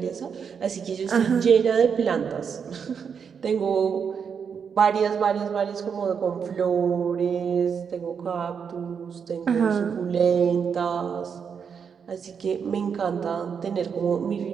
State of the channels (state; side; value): quieter; left; 6.7 dB